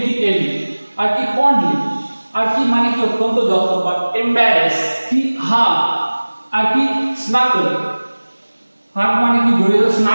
আর কি ফন্ডলি আর কি মানে কি অত্যন্ত যত্নবান, এম্বারেস কি হাগ, আর কি স্নাগল, হাগ মানে কি জড়িয়ে,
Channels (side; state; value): both; inverted; correlation -1.00